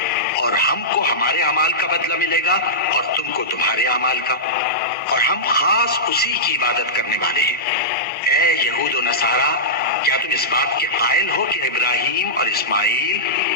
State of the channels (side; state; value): both; normal; correlation -0.14